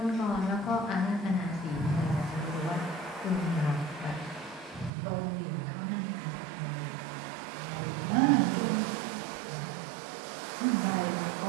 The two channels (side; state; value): left; drops out; at 4.9 s